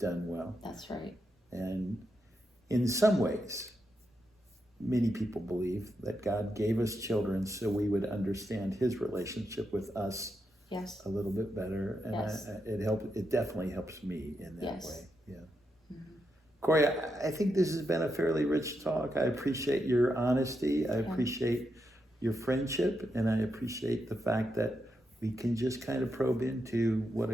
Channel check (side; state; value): both; normal; correlation 0.84